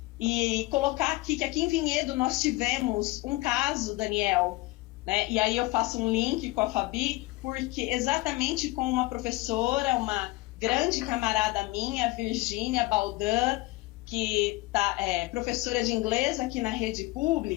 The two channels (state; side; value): quieter; right; 21.1 dB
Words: e colocar aqui que aqui em Vinhedo nós tivemos um caso, Daniel, né, e aí eu faço um link com a Fabi, porque exatamente com uma professora, uma grande camarada minha, Virgínia Baldan, que é professora de inglês aqui na rede